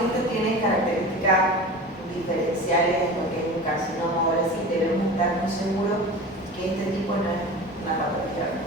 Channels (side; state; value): both; normal; correlation 0.34